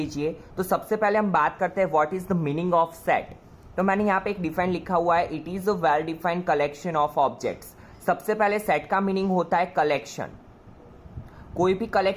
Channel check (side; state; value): both; identical; correlation 1.00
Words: तो सबसे पहले हम बात करते हैं what is the meaning of set. तो मैंने यहाँ पे एक डिफाइन लिखा हुआ है, it is a well defined collection of objects. सबसे पहले सेट का मीनिंग होता है कलेक्शन. कोई भी